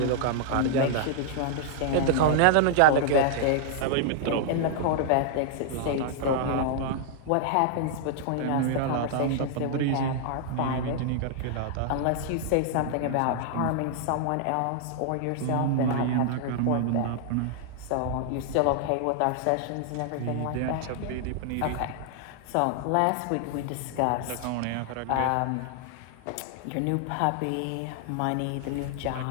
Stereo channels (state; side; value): different; both; correlation -0.01